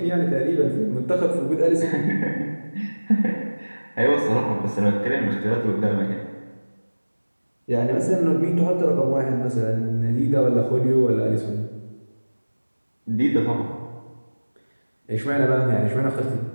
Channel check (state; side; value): inverted; both; correlation -1.00